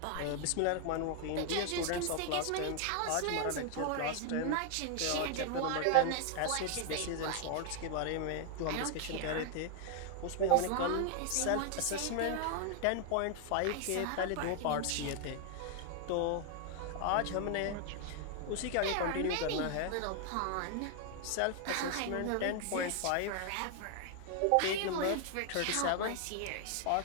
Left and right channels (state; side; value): different; both; correlation 0.00